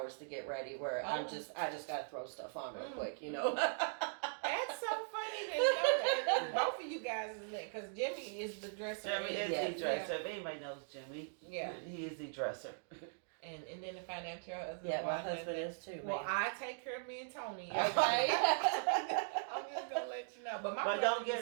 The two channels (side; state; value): left; silent; digital silence